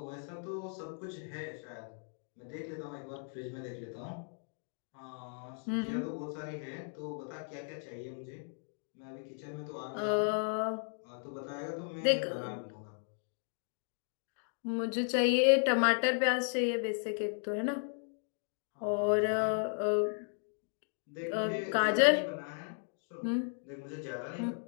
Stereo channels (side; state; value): right; silent; 54 dB below the other